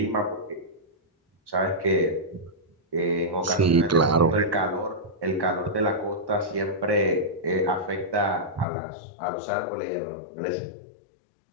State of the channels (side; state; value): right; drops out; at 8.7 s